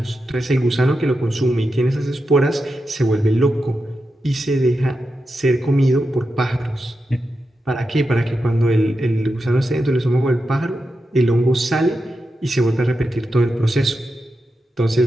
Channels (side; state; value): both; normal; correlation 0.89